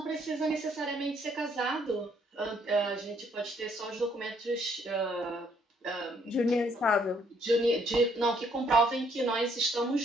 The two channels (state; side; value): normal; both; correlation 0.67